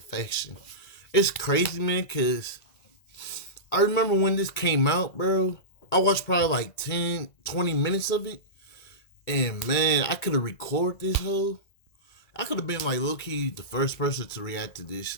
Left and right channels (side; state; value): right; late; 2.2 ms